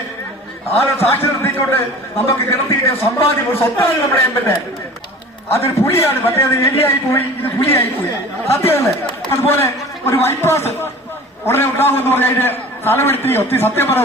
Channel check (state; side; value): normal; both; correlation 0.41